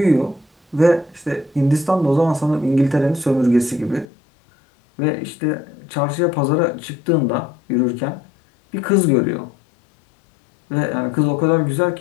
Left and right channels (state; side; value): drops out; right; at 4.0 s